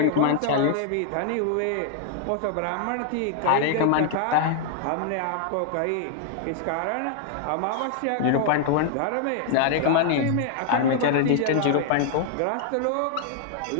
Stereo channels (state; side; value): different; both; correlation 0.00